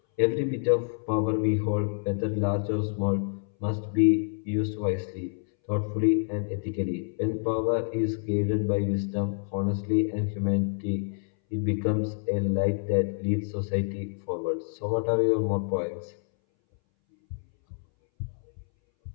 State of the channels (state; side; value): silent; right; 60 dB below the other